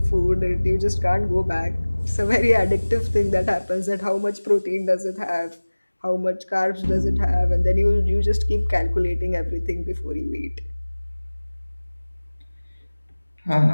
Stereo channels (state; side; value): inverted; both; correlation -1.00